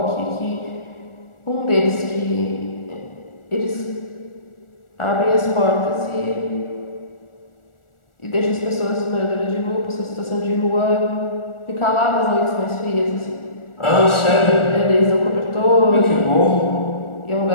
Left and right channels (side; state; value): right; late; 1.4 ms